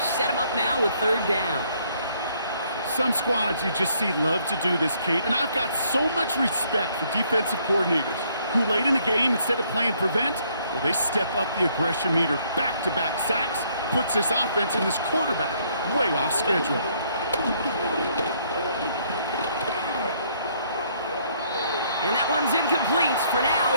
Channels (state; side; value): inverted; both; correlation -0.67